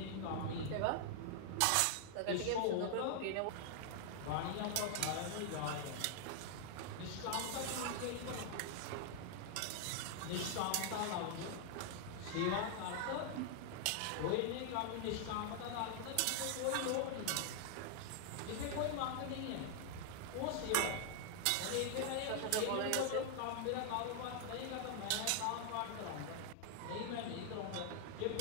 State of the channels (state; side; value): different; both; correlation 0.00